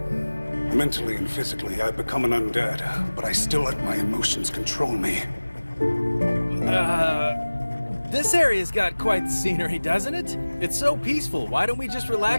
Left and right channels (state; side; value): inverted; both; correlation -1.00